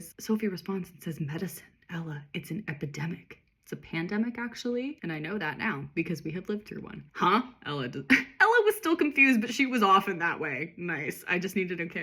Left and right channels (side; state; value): both; identical; correlation 1.00